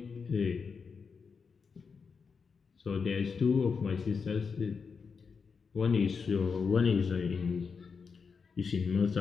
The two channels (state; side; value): quieter; right; 5.5 dB